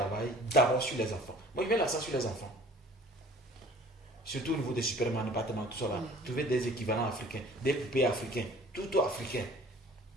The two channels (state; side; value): normal; both; correlation 0.49